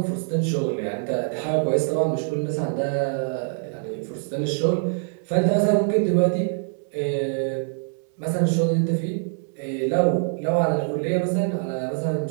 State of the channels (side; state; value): left; silent; digital silence